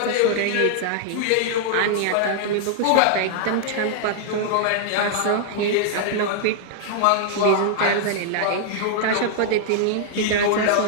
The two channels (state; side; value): different; both; correlation -0.01